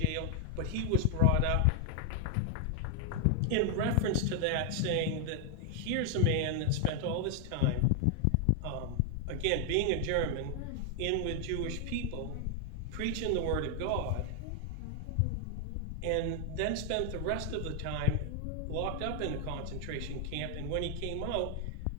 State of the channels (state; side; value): different; both; correlation 0.00